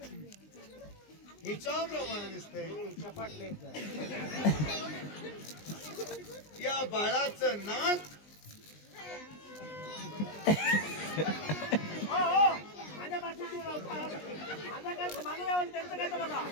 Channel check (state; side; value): late; right; 20 ms